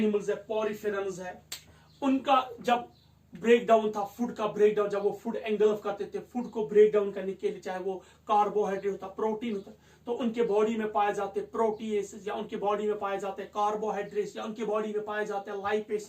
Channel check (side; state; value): both; identical; correlation 1.00